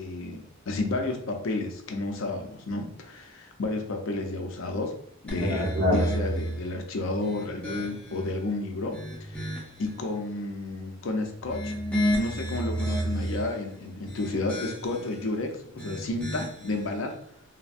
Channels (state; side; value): normal; both; correlation 0.47